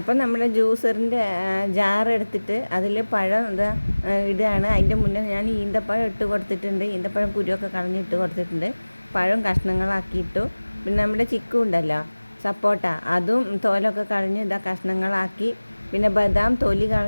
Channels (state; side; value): inverted; both; correlation -1.00